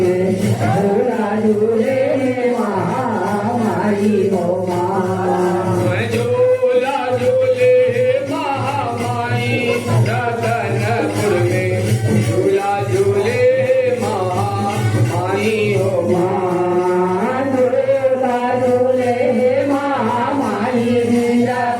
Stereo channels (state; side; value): identical; both; correlation 1.00